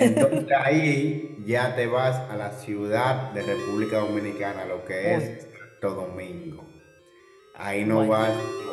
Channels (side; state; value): both; identical; correlation 1.00